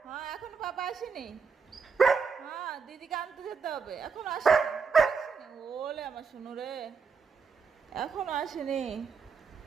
হ্যাঁ এখন পাপা আসেনি। হ্যাঁ দিদিকে আনতে যেতে হবে, এখন আসেনি। ওলে আমার শুনু রে, এখনো আসেনি।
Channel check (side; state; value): left; quieter; 5.6 dB